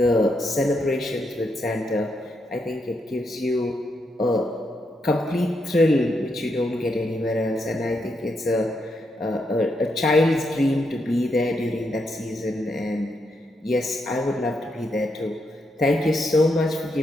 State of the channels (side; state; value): both; normal; correlation 0.80